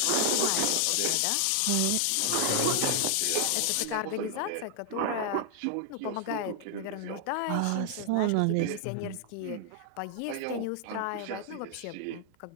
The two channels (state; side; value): different; both; correlation 0.00